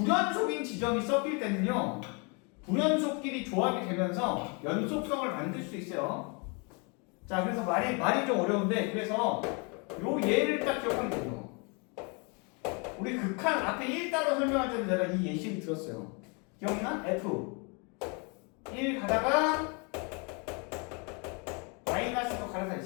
지점이 섞일 때는요. 불연속끼리 조합이 되면서 연속성을 만들 수 있어요. 자, 그래서 말이 좀 어려운데 그래서 요 예를 딱 기억하면 돼요. 우리 극한 앞에 1 따로 설명할 때는 내가 이 예시를 들었어요. 기억나? F 1 가다가 마이너스로 갈아타 이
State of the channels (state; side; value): quieter; right; 33.1 dB